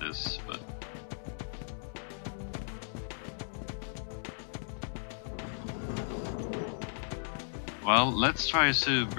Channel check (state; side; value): silent; right; digital silence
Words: but well, let's try to